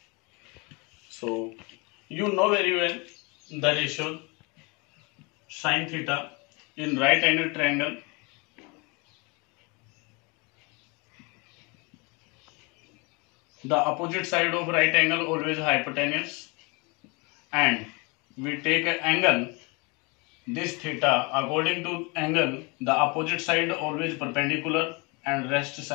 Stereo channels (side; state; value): right; quieter; 29.3 dB